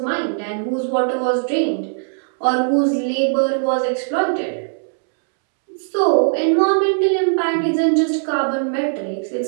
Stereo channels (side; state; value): left; silent; 66 dB below the other